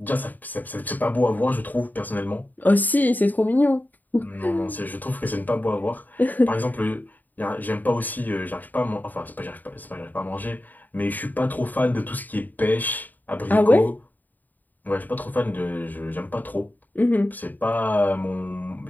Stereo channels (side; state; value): right; late; 0.085 ms